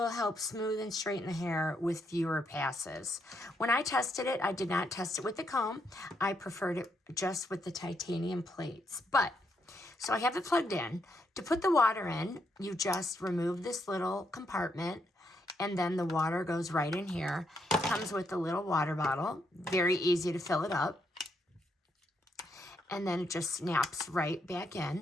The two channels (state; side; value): normal; both; correlation 0.77